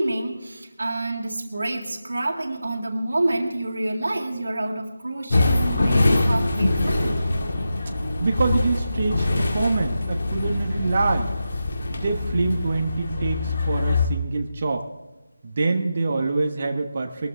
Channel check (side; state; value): both; inverted; correlation -0.90